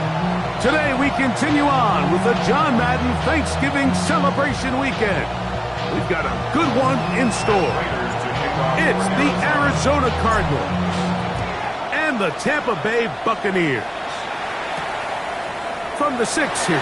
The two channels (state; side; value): identical; both; correlation 1.00